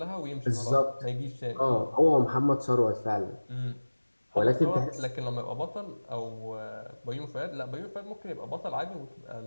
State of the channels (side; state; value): both; inverted; correlation -1.00